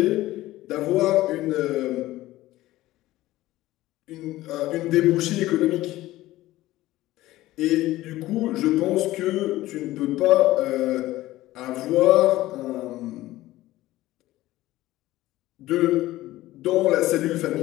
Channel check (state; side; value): quieter; right; 16.5 dB